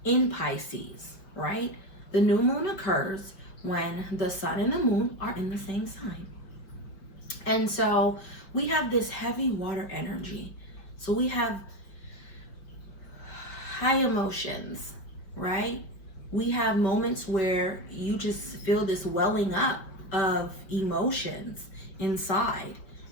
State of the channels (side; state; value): right; late; 5.2 ms